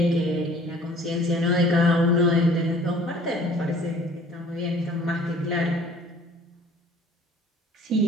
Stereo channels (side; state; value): both; normal; correlation 0.52